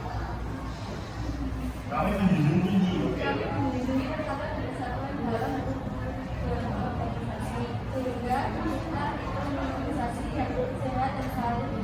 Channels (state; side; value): identical; both; correlation 1.00